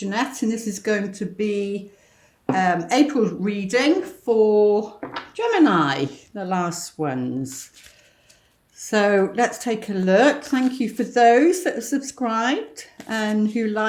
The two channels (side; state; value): both; identical; correlation 1.00